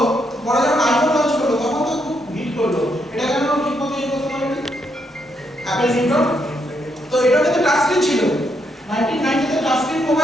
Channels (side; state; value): both; normal; correlation 0.77